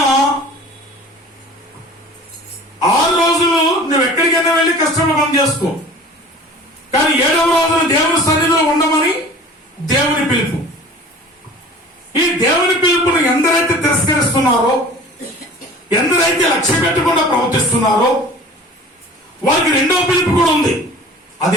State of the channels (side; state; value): both; normal; correlation 0.44